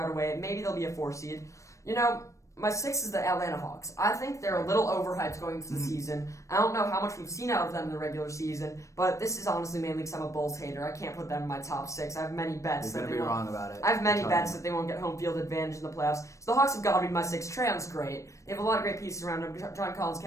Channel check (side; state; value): right; late; 0.15 ms